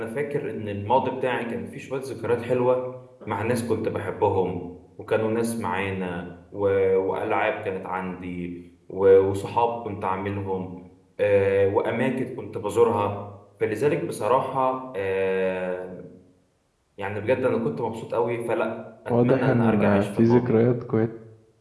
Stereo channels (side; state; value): both; identical; correlation 1.00